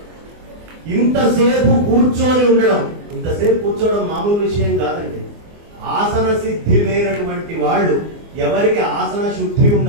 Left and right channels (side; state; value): left; late; 24 ms